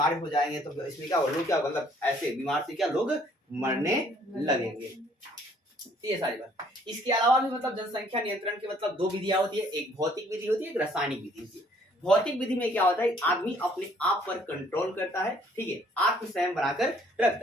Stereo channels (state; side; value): normal; both; correlation 0.61